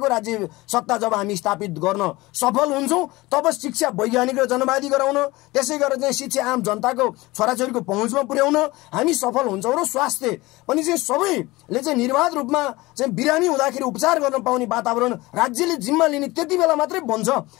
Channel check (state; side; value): quieter; right; 20.7 dB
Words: राज्य सत्ता जब हामी स्थापित गर्न सफल हुन्छौँ तब शिक्षा वैज्ञानिक र जनवादी गराउन, त्यसै गरेर चाहिँ शिक्षा आम जनताको छोराछोरीको पहुँचमा पुर्याउन हामी सफल हुन्छौँ र स्वास्थ्य पनि चाहिँ सबैले चाहिँ निर्वाध रूपमा चाहिँ बिरामी हुँदाखेरि उपचार गर्न पाउने वातावरण राज्यले जिम्मा लिने त्यति बेला मात्रै बन्छ